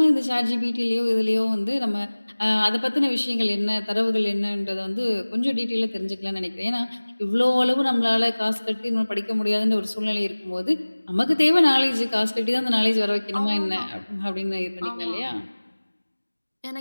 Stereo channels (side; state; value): both; inverted; correlation -1.00